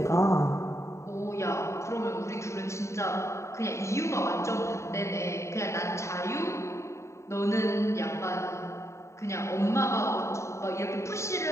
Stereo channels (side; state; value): right; late; 0.14 ms